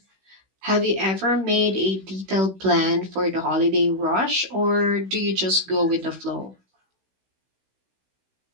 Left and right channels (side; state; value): left; late; 16 ms